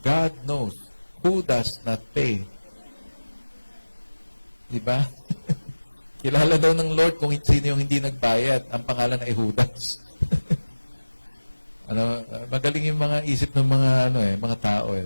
God knows who does not pay. Di ba? Kilala daw ng Lord kung sino yung hindi nagbayad. Ang pangalan ay Judas. Magaling yung mga isip ng mga tao.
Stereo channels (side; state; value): both; inverted; correlation -1.00